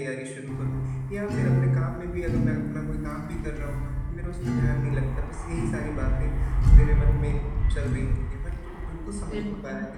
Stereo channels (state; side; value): identical; both; correlation 1.00